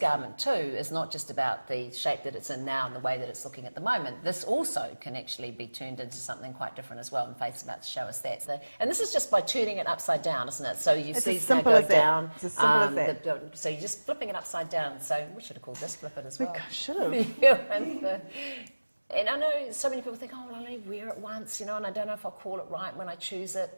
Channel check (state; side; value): inverted; both; correlation -1.00